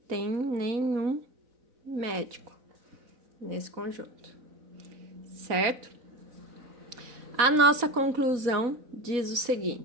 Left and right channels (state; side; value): late; left; 4.0 ms